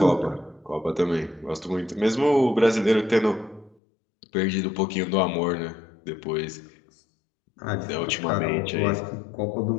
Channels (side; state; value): right; drops out; at 3.8 s